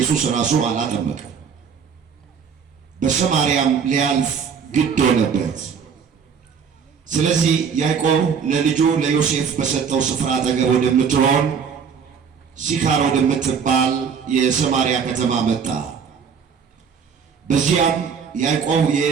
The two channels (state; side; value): quieter; left; 6.6 dB